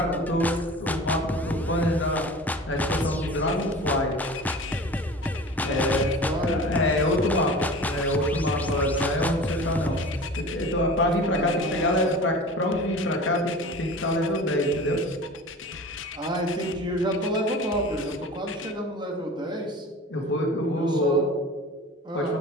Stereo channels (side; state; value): both; normal; correlation 0.38